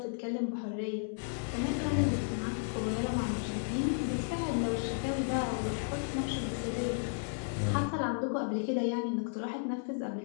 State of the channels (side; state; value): right; silent; digital silence